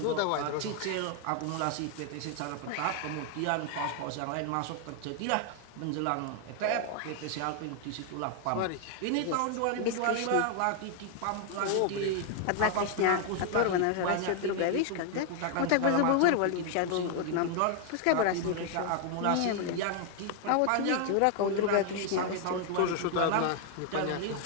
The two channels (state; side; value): different; both; correlation 0.00